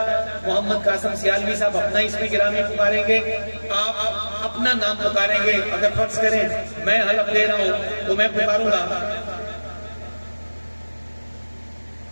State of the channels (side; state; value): both; inverted; correlation -1.00